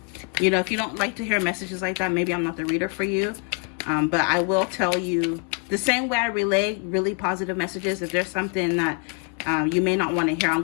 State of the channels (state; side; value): quieter; right; 37.0 dB